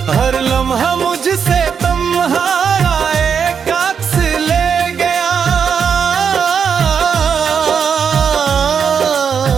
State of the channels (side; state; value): left; quieter; 6.8 dB